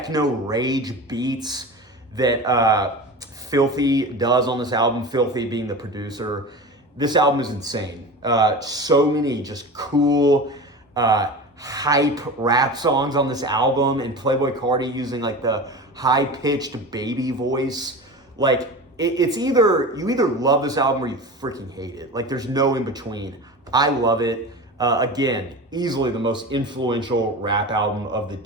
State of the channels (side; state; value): both; normal; correlation 0.31